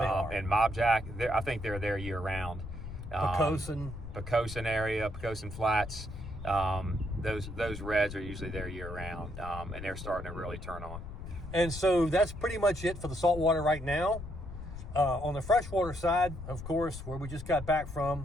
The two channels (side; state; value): left; noise; rumble, 10 dB below the sound